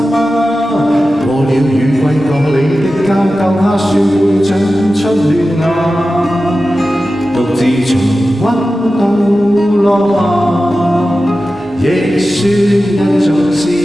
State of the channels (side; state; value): both; normal; correlation 0.94